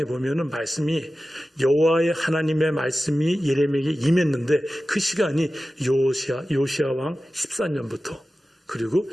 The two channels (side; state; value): both; normal; correlation 0.95